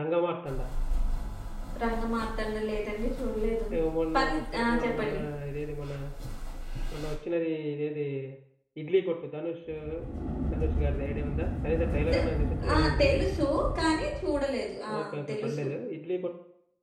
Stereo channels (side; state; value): both; identical; correlation 1.00